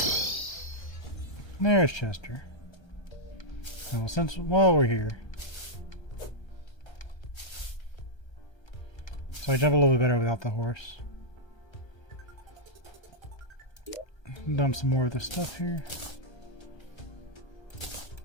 There's Chester. Well, while we're here. So I jump a little bit better without the horse. Dump some more of this stuff here.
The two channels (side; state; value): right; late; 1.3 ms